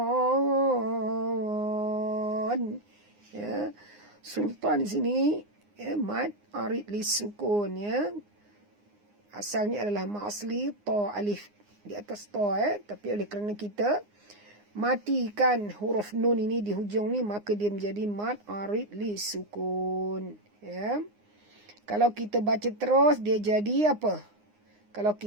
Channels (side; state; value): left; late; 9.7 ms